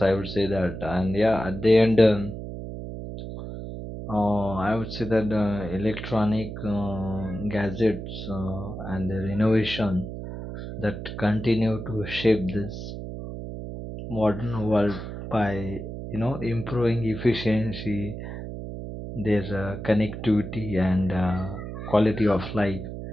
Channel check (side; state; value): right; noise; hum, 8 dB below the sound